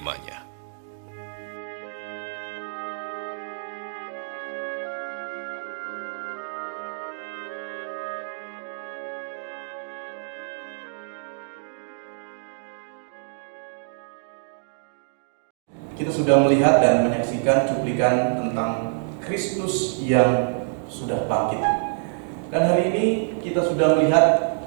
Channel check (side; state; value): left; silent; digital silence